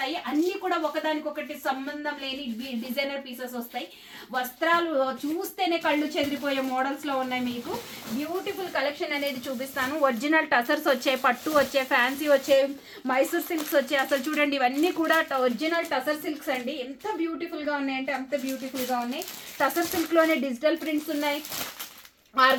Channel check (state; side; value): identical; both; correlation 1.00